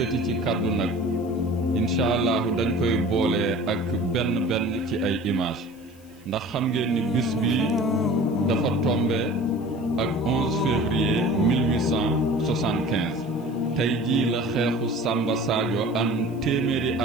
ci kàddu nag incha allahu dañ koy boole ak benn ci ay image ndax xam ngeen ni bis bi dafa tombe ak 11 février 1875 tey jii la xeexu Samba Sadio am téeméeri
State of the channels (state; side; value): noise; left; hiss, 28 dB below the sound